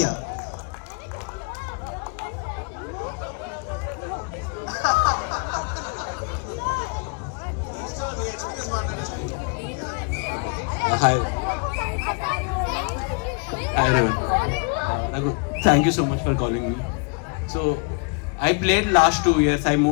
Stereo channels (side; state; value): right; quieter; 35.0 dB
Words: Hi everyone. Thank you so much for calling me. So I played last 2 years. I